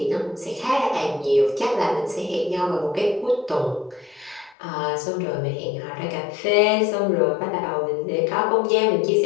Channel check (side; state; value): right; drops out; at 4.5 s